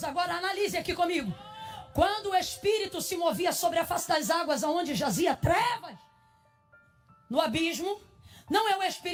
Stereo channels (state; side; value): identical; both; correlation 1.00